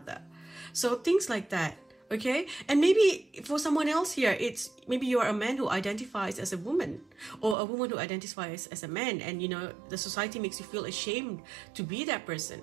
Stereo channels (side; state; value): left; drops out; at 7.6 s